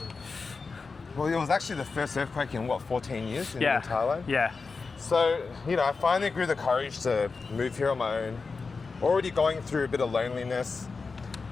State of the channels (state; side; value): quieter; right; 4.5 dB